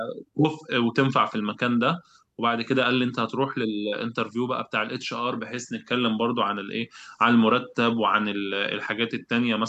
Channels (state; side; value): identical; both; correlation 1.00